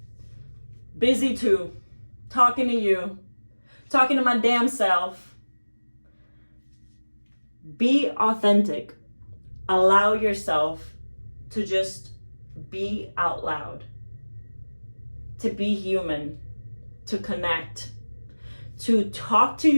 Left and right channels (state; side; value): inverted; both; correlation -1.00